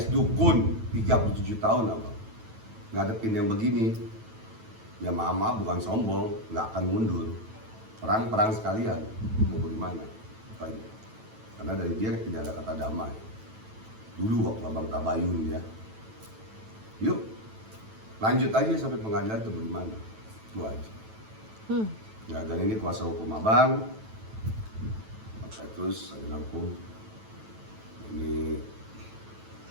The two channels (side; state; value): left; late; 9.1 ms